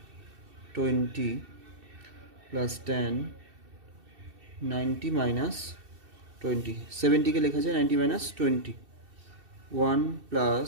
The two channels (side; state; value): left; late; 2.7 ms